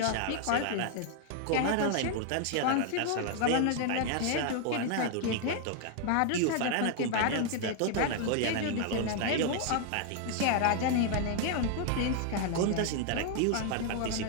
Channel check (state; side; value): different; both; correlation 0.00